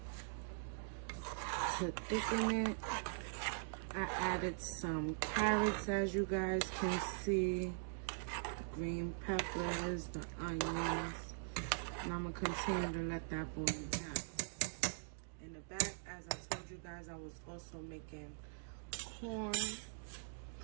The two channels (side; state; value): left; silent; digital silence